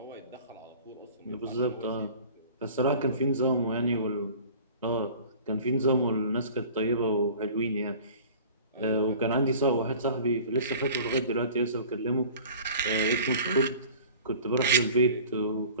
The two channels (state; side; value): inverted; both; correlation -0.44